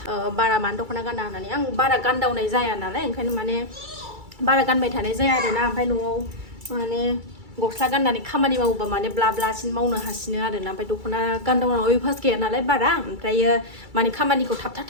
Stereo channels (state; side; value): late; left; 2.3 ms